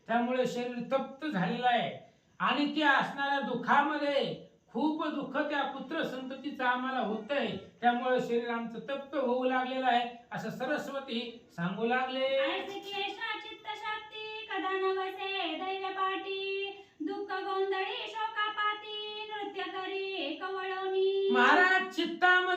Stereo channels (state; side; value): identical; both; correlation 1.00